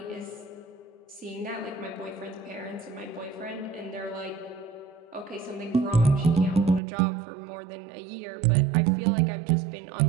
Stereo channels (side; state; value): left; drops out; at 6.8 s